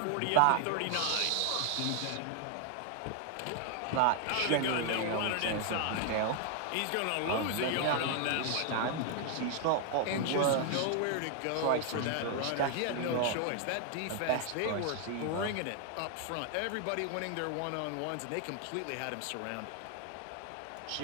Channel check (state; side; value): different; both; correlation 0.00